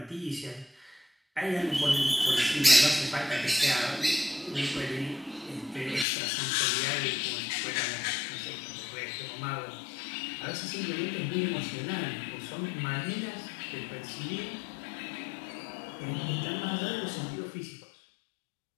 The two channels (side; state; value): right; drops out; at 6.1 s